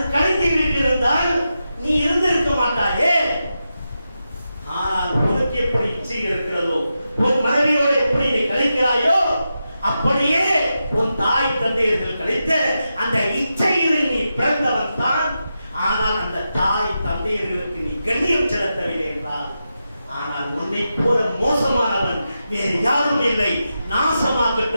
கழித்து விட்டிருந்தால் நீ இருந்திருக்க மாட்டாயே. ஆனால் உனக்கு எப்படி இச்சை இருக்கிறதோ, உன் மனைவியோட எப்படி நீ கழிக்கிறாயோ, அப்படியே உன் தாய் தந்தையர்கள் கழித்த அந்த இச்சையில் நீ பிறந்தவன் தான். ஆனால் அந்த தாய் தந்தையர்களுக்கு நீ கண்ணியம் செலுத்தவில்லை என்றால், ஆனால் உன்னை போல மோசமானவன் வேறு யாரும் இல்லை,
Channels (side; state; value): both; inverted; correlation -0.89